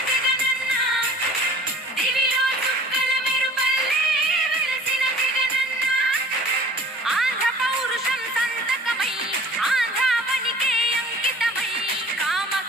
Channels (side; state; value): both; normal; correlation 0.47